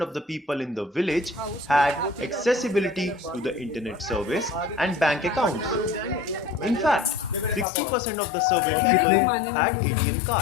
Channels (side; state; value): right; drops out; at 7.7 s